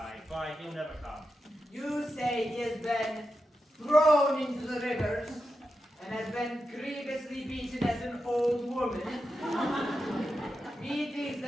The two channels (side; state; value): both; normal; correlation 0.89